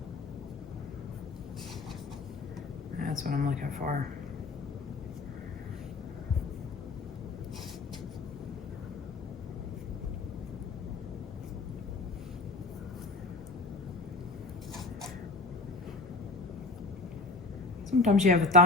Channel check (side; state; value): right; quieter; 3.5 dB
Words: That's what I'm looking for. Sometimes you have a